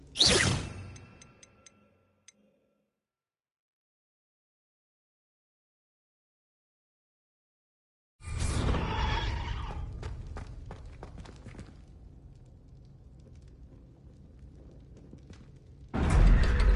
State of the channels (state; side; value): identical; both; correlation 1.00